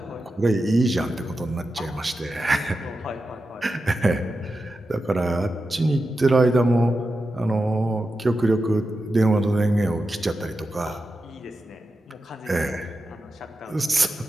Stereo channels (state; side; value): normal; both; correlation 0.90